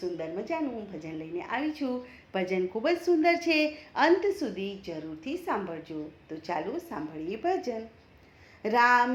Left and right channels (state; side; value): identical; both; correlation 1.00